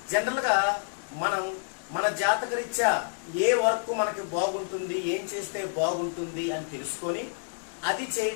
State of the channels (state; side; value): silent; right; digital silence